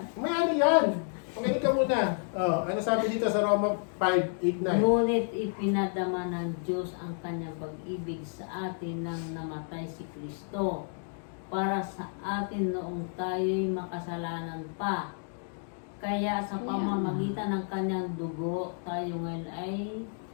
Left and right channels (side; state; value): right; silent; 57 dB below the other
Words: May ano yan? Pakinig ka muna. Oh, ano sabi dito sa Roma 5:8-9? Ngunit ipinadama ng Diyos ang kanyang pag-ibig sa atin nang namatay si Kristo para sa atin noong tayo'y makasalanan pa. Kaya sa pamamagitan ng kanyang dugo, tayo ngayon ay